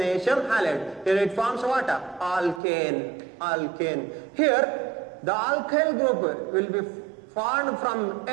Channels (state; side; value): drops out; left; at 2.6 s